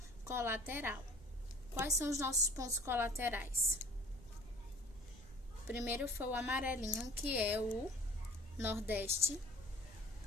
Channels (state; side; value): noise; right; rumble, 19 dB below the sound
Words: colateral. Quais são os nossos pontos colaterais? Primeiro foi o amarelinho, que é o nordeste,